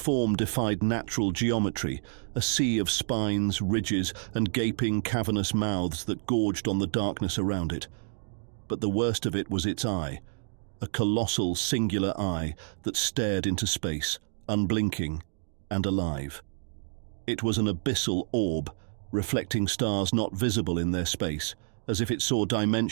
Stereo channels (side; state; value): left; silent; digital silence